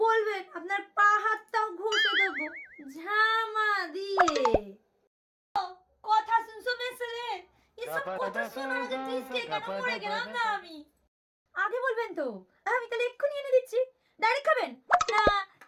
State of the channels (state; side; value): identical; both; correlation 1.00